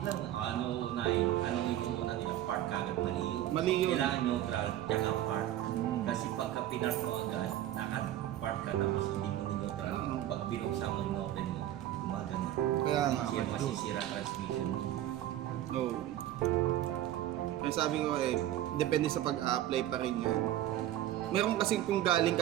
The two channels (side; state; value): left; quieter; 13.0 dB